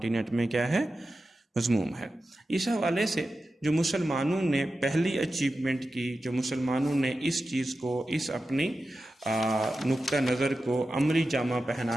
में क्या है, मज़मूम है। इस हवाले से जो मुसलमानों ने पहली अचीवमेंट की, जो मुसलमानों ने इस चीज़ को, इस अपनी नुक्ता नज़र को अमली जामा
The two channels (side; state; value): both; normal; correlation 0.92